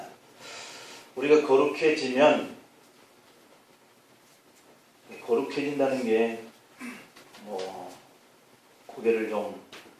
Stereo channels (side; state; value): both; identical; correlation 1.00